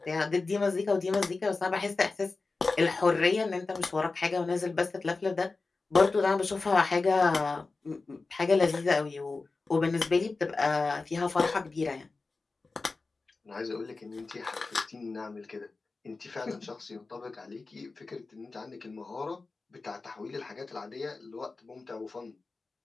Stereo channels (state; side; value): quieter; right; 3.8 dB